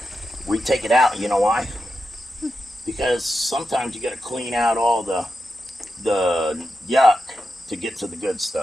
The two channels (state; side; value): normal; both; correlation 0.89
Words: We take it out. You know why? Because sometimes you got to clean out all the yuck to get to the good